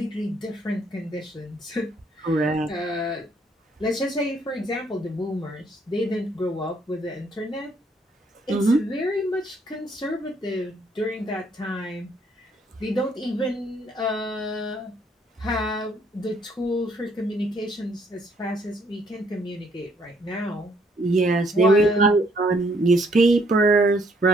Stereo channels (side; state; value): both; normal; correlation 0.67